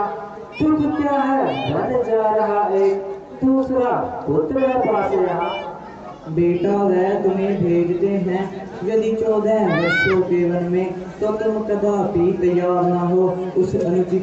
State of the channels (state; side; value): identical; both; correlation 1.00